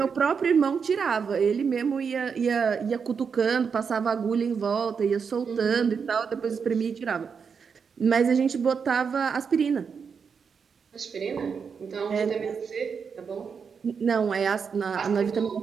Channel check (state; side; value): quieter; left; 6.1 dB